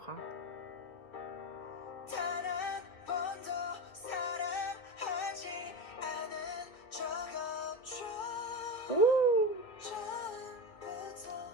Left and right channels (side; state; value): right; late; 2.1 ms